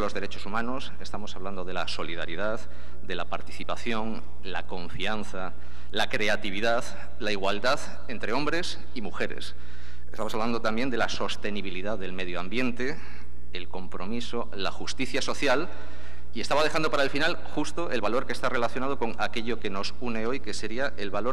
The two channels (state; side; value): noise; right; hum, 10 dB below the sound